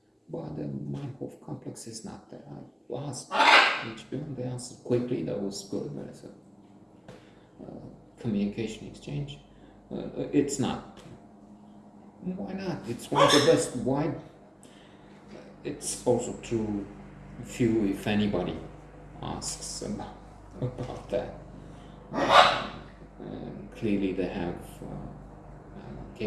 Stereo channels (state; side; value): identical; both; correlation 1.00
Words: but the Meinhof complex is not there. I asked HBO and they answered quickly, that was good. There's a communication exchange. It's not. Why not? It's one of the best. Why? It's also true, few, if anybody, asks about that. Clearly they have